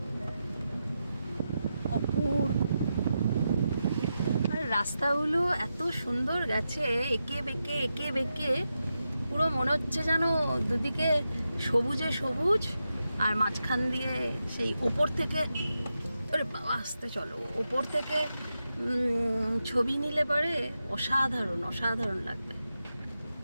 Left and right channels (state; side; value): inverted; both; correlation -0.89